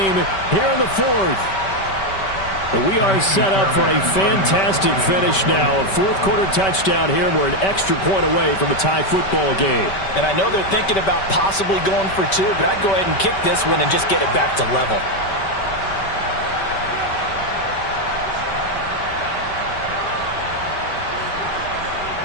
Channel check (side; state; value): right; late; 5.2 ms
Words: here in the 4th. We are set up for a fantastic finish now. A fourth-quarter touchdown here, and we're an extra point away from a tie football game. And I know they're thinking about possibly going for two, but I'd go ahead and kick this one and just get it back to level.